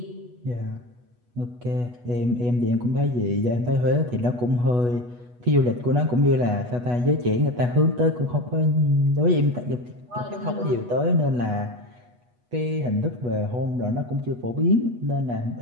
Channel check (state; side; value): late; left; 8.2 ms